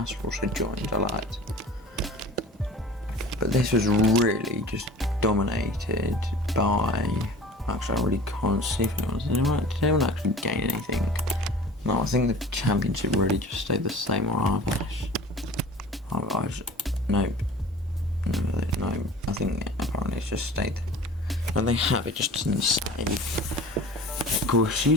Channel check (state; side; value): normal; both; correlation 0.42